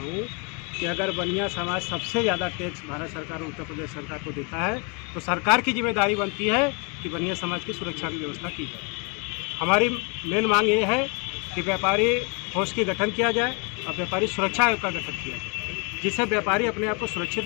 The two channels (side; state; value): right; quieter; 33.5 dB